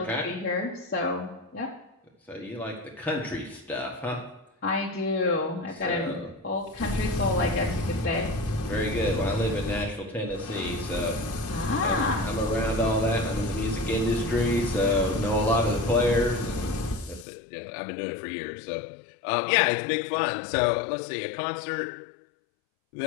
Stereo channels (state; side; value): drops out; right; at 17.2 s